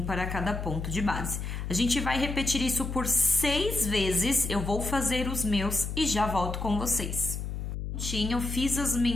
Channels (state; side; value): noise; left; hum, 5 dB below the sound